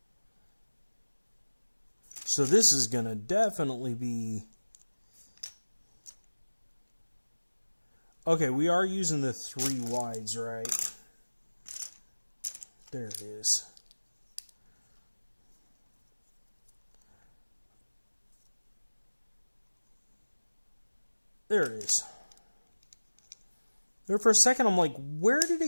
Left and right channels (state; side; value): inverted; both; correlation -1.00